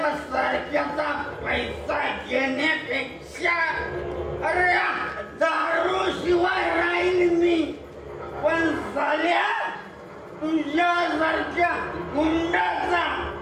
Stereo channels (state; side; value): identical; both; correlation 1.00